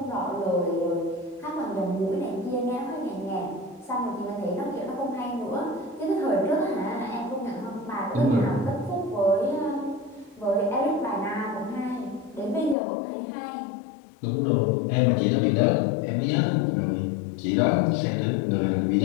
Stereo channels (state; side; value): drops out; right; at 12.8 s